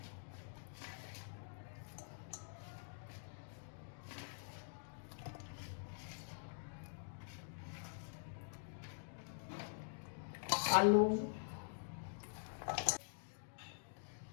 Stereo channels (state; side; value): silent; right; digital silence